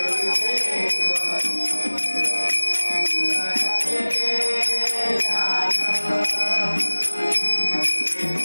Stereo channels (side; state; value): both; inverted; correlation -1.00